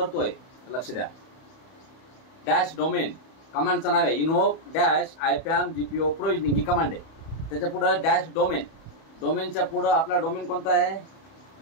लक्ष द्या. डॅश डोमेन कमांडचं नाव आहे invoke dash IPAM GPO provisioning ही कमांड आहे. त्याच्या पुढं डॅश डोमेन. डोमेनच्या पुढं आपला डोमेन कोणता आहे.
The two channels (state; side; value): late; right; 31 ms